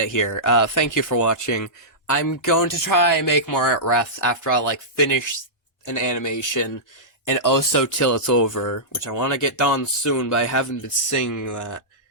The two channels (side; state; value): both; normal; correlation -0.15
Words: here. Thank you for watching. I'm going to try and make more art refs after I, like, finish an animation, and also till it's over, which I want to get done soon, but I haven't been singing that.